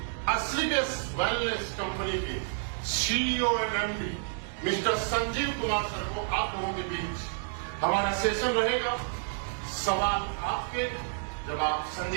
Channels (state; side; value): silent; left; digital silence